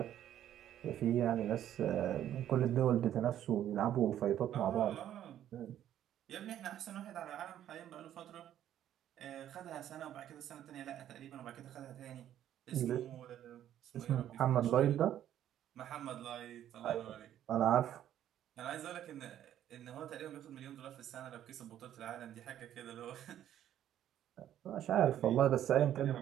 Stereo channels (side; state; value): left; quieter; 11.3 dB